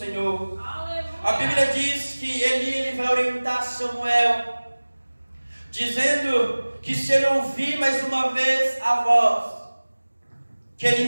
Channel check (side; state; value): both; inverted; correlation -1.00